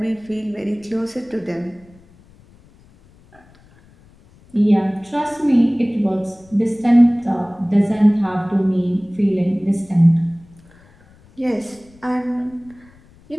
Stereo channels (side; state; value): left; noise; rumble, 28 dB below the sound